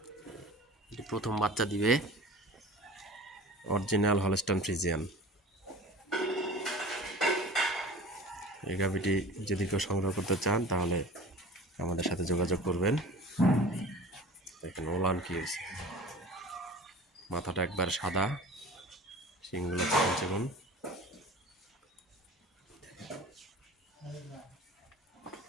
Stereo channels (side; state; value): both; normal; correlation 0.40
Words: এটি প্রথম বাচ্চা দিবে, অরিজিনাল হলস্টাইন ফ্রিজিয়ান। এই গাভীটি যদি কেউ সংগ্রহ করতে চান তাহলে আমাদের সাথে যোগাযোগ করবেন। দেখেন ওলান কি হয়েছে, মাথাটা একবার সাদা, শিংগুলো চিকন চিকন।